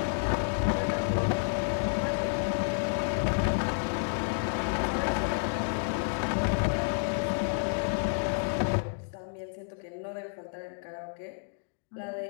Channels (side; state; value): right; silent; digital silence